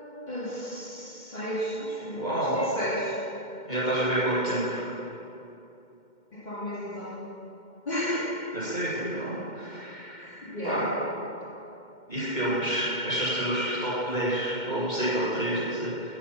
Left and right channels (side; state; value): right; late; 2.1 ms